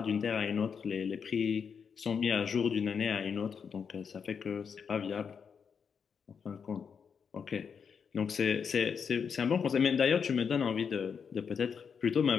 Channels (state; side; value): quieter; right; 6.5 dB